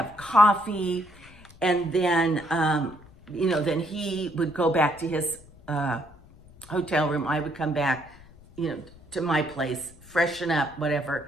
coffee. And then, you know, then he would go back to his hotel room. I would come back, you know, to my place, freshen up,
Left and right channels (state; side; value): noise; left; rumble, 23 dB below the sound